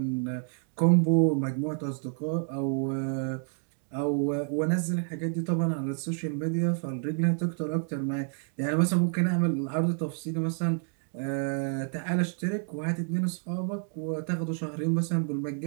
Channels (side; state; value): left; silent; 56 dB below the other